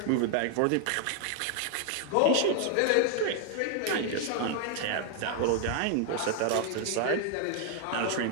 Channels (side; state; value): both; different; correlation 0.00